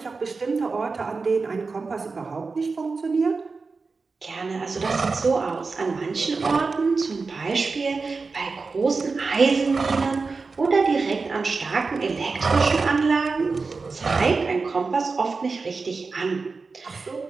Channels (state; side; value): quieter; left; 4.3 dB